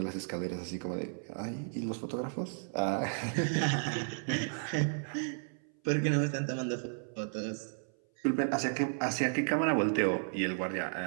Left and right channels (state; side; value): silent; left; 55 dB below the other